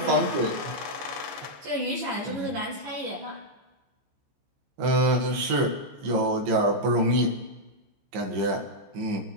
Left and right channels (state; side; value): late; left; 15 ms